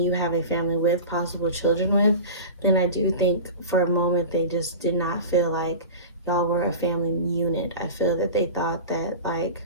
you have a family with, possible children with, then I do think for a moment they just did not feel like y'all were a family unit. I feel that they thought that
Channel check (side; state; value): both; inverted; correlation -0.32